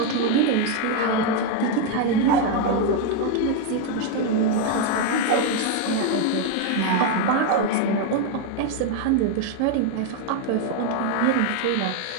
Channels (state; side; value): different; both; correlation 0.01